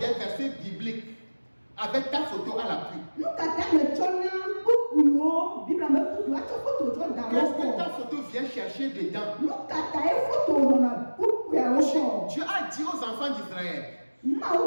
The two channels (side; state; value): both; inverted; correlation -1.00